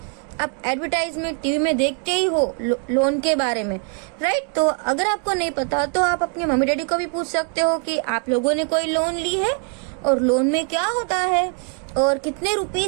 आप एडवर्टाइजमेंट टीवी में देखते ही हो लोन के बारे में, राइट। तो अगर आपको नहीं पता तो आप अपने मम्मी डैडी को भी पूछ सकते हो कि आप लोगों ने कोई लोन ली है और लोन में क्या होता है और कितने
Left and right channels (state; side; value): quieter; left; 39.8 dB